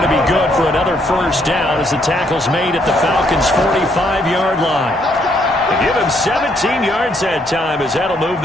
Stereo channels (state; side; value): normal; both; correlation 0.71